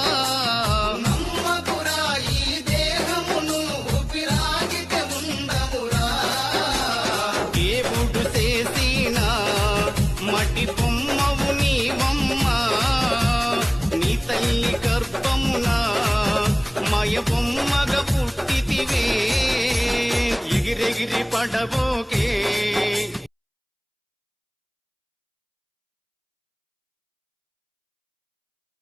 నమ్మకురా ఈ దేహమును ఊపిరాగితే ఉండవురా దేవుడు చేసిన మటి బొమ్మవు నీవమ్మ నీ తల్లి గర్భమున మయ బొమ్మగా పుట్టితివే ఎగిరెగిరి పడబోకే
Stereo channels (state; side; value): identical; both; correlation 1.00